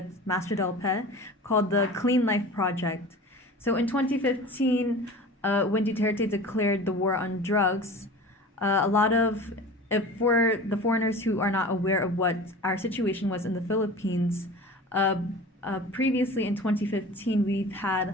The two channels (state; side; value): normal; both; correlation 0.37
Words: Master Del Pe, called the Clean Life Project. So in 2015, when Duterte declared the war on drugs, a lot of, for the foreigners who are not aware of what our situation was in the Philippines, previously in 2015, we've